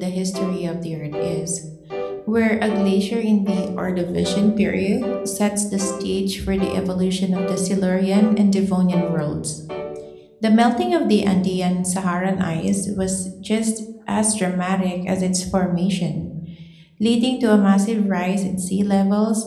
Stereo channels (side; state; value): both; identical; correlation 1.00